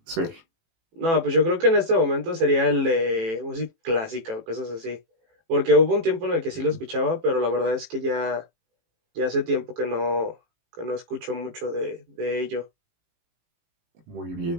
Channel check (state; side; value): late; left; 18 ms